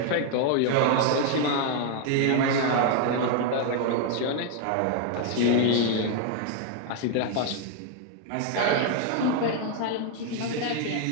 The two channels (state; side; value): different; both; correlation 0.01